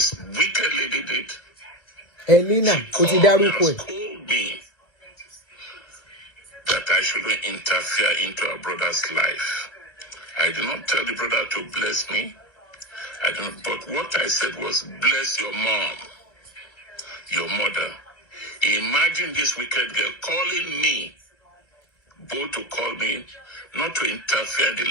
wicked lady did? Elena, she called me that I shouldn't interfere into her brother's life. I did not tell the brother to bless me. But what I said was, bless your mom, your mother. Imagine this wicked girl calling me, both to call me, not to interfere in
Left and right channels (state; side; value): late; right; 2.2 ms